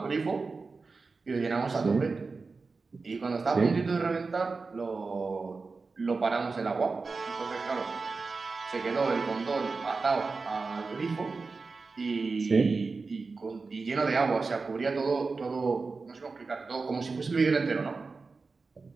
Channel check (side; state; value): left; quieter; 4.2 dB